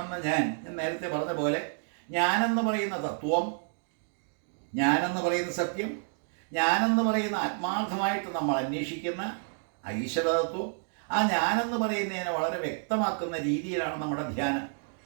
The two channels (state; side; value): silent; left; 58 dB below the other